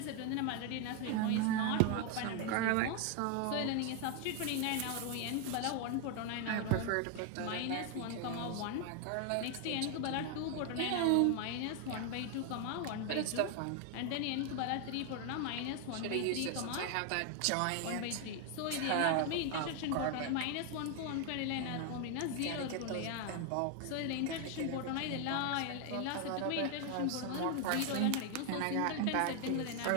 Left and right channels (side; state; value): both; different; correlation 0.01